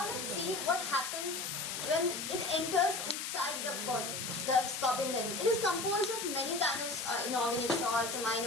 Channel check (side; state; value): left; noise; hiss, 4 dB below the sound